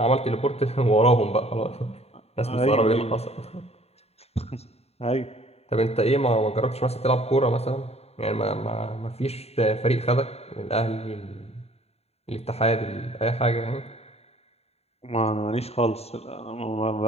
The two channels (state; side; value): late; right; 0.30 ms